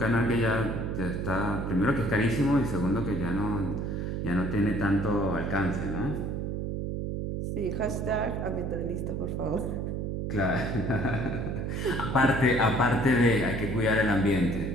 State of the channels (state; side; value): noise; right; hum, 2 dB below the sound